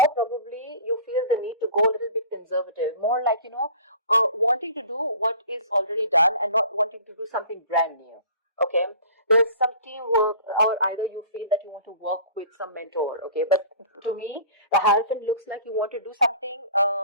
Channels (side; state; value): both; inverted; correlation -0.45